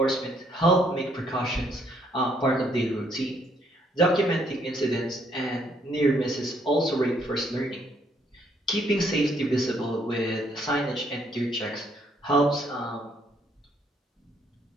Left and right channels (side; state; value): both; normal; correlation 0.69